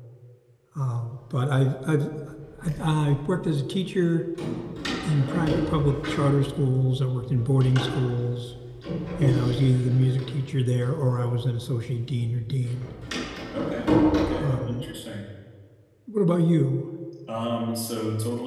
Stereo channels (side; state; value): both; identical; correlation 1.00